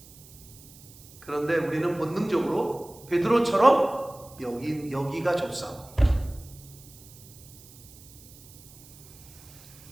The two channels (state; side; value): noise; right; hiss, 21 dB below the sound